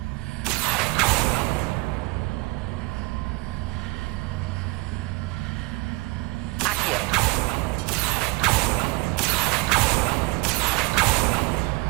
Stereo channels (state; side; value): quieter; left; 24.1 dB